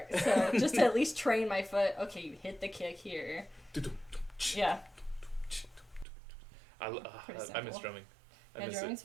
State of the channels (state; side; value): drops out; left; at 6.1 s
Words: So just to at least train my foot. Okay, you hit the kick here. Yeah. I Pretty miss simple. drumming. I Yeah, miss drumming's